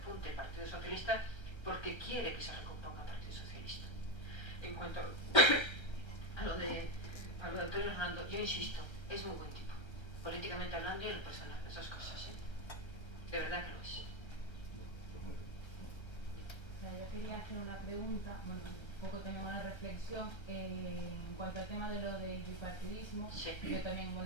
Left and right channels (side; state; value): right; late; 1.3 ms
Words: el Partido Socialista porque quiere que se recomponga el Partido Socialista. En cuanto a lo de Antonio Hernando, yo insisto, es muy buen tipo, políticamente hablando y en lo personal, las dos cosas, de verdad que lo es. Yo quería hacer una pregunta, bueno, un poco también una reflexión en cuanto al tema de lo del bipartidismo. Sí. Yo también,